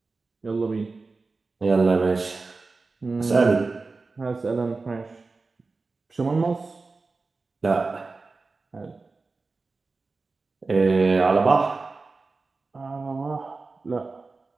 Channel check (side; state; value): left; quieter; 3.9 dB